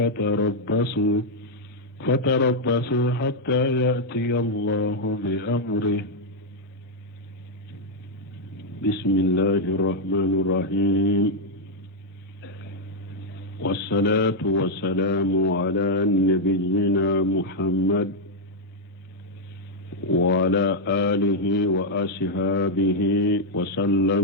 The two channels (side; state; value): both; normal; correlation -0.02